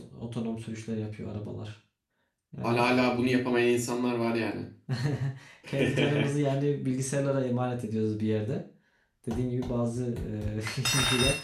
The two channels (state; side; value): identical; both; correlation 1.00